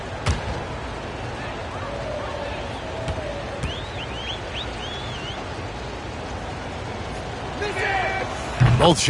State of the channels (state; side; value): identical; both; correlation 1.00